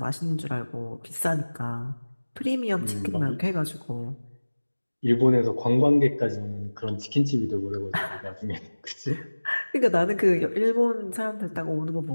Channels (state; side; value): inverted; both; correlation -1.00